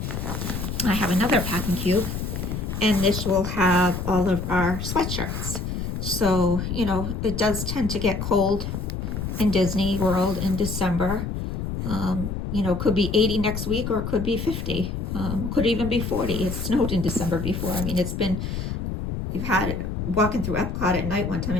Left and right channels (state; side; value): noise; left; rumble, 4 dB below the sound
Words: I have another packing cube, and this will have all of our sweatshirts. So, it does tend to get cold in Disney World in December. Could be 80 next week or it could be 50. Could even be 40. It snowed in December before. I mean, you've had walking through Epcot at night one time